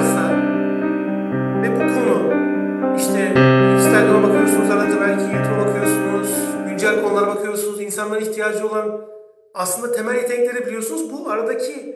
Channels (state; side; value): identical; both; correlation 1.00